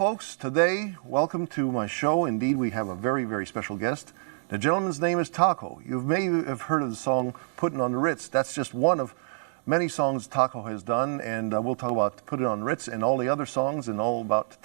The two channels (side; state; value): left; silent; digital silence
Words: today, welcome to my show. Indeed, we have a very, very special guest. The gentleman's name is Taco. You may have heard of the song Puttin' on the Ritz. That's just one of many songs Taco has done, and we'll talk about Put It on Ritz and all the other songs and all about